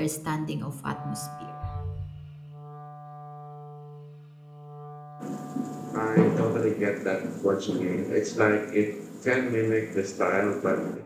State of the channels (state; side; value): identical; both; correlation 1.00